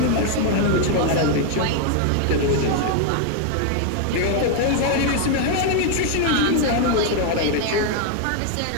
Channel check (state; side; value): different; both; correlation 0.00